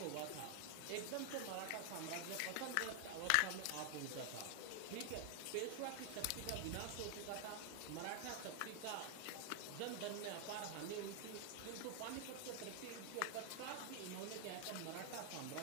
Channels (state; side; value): different; both; correlation 0.00